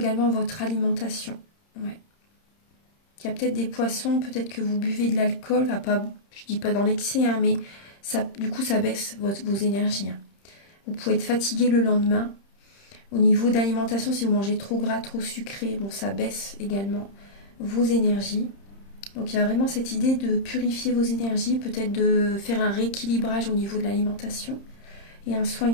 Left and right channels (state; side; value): late; right; 30 ms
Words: à votre alimentation. Ouais. Il y a peut-être des poissons, peut-être que vous buvez de l'alcool. Enfin, pas, je ne dis pas dans l'excès, hein, mais ça, du coup, ça baisse vos énergies. Hein. Vous pouvez être fatigué le lendemain. Au niveau d'alimentation, si vous mangez trop gras, trop sucré, bon, ça baisse également vos énergies. Donc il y a vraiment cette idée de purifier vos énergies, peut-être de faire un rééquilibrage au niveau de l'alimentation et un soin